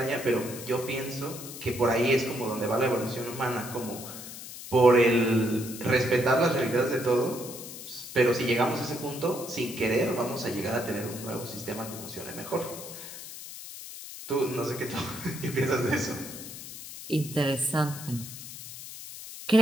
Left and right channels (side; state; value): left; noise; hiss, 12 dB below the sound